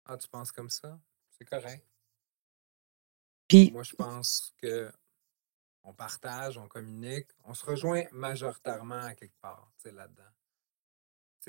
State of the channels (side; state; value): left; silent; digital silence